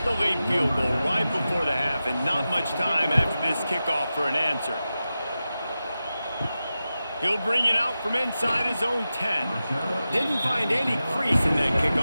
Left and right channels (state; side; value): inverted; both; correlation -0.93